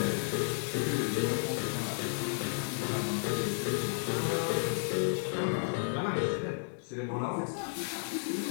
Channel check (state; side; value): silent; right; digital silence